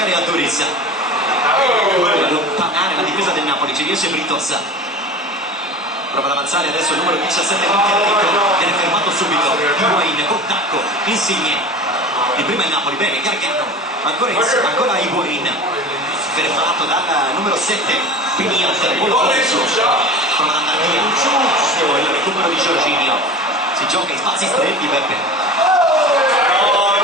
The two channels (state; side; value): normal; both; correlation 0.35